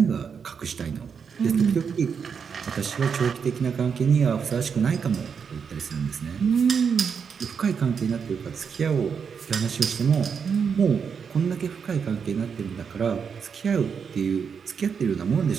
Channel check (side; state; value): left; quieter; 6.5 dB